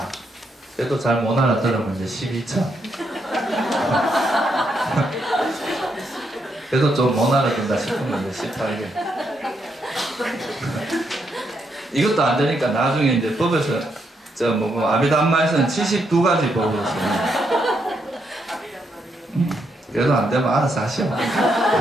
그래도 잘 못 알아들으면 이제 12처. 그래도 좀 못 알아듣는다 싶으면 이제 18개. 이것도 안 되니까 나중에 이제 법에서 아비담마에서는 72가지 법으로 씁니다. 그래도 안 되면 알아서 하시오.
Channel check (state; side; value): normal; both; correlation 0.78